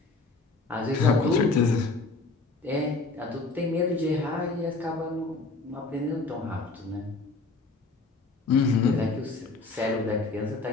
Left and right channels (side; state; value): right; quieter; 3.7 dB